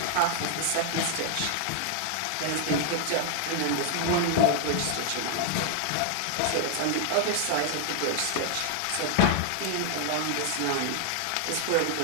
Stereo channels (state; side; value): different; both; correlation 0.00